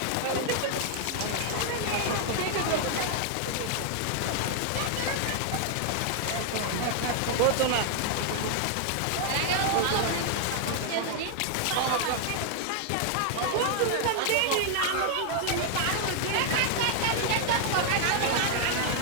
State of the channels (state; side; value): different; both; correlation 0.00